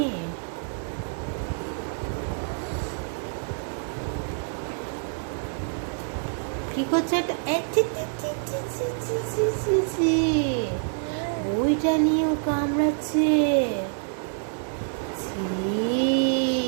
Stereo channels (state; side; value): silent; left; 59 dB below the other